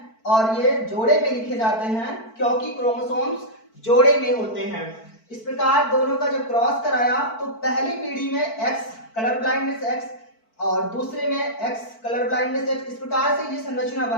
और ये जोड़े में लिखे जाते हैं क्योंकि क्रोमोसोम्स जोड़े में होते हैं। इस प्रकार दोनों का जब क्रॉस कराया तो पहली पीढ़ी में X कलर ब्लाइंडनेस X और दूसरे में X कलर ब्लाइंडनेस X। इस प्रकार से ये संरचना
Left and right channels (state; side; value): late; right; 4.5 ms